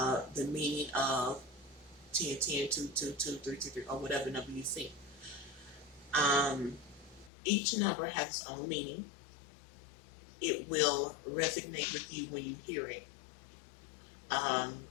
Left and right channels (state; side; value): drops out; right; at 7.3 s